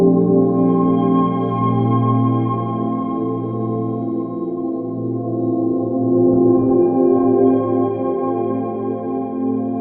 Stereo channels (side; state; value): both; identical; correlation 1.00